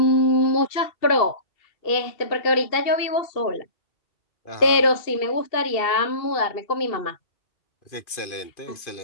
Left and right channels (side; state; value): right; late; 2.5 ms